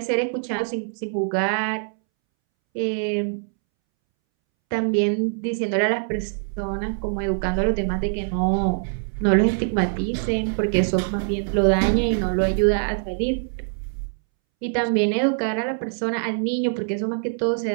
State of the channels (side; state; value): left; silent; 63 dB below the other